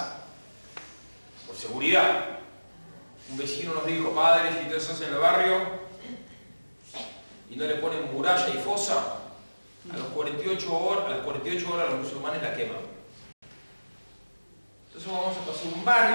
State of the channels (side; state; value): both; inverted; correlation -1.00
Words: por seguridad. Un vecino nos dijo, padre, si ustedes hacen el barrio y no le ponen muralla y fosa, a las 48 horas los musulmanes la queman. Entonces vamos a pasar un